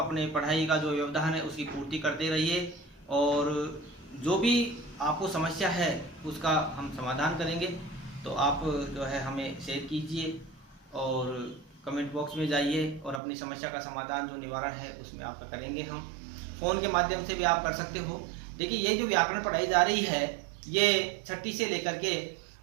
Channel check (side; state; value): left; drops out; at 13.2 s